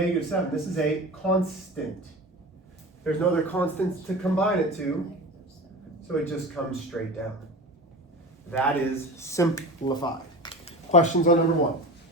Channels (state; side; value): normal; both; correlation 0.32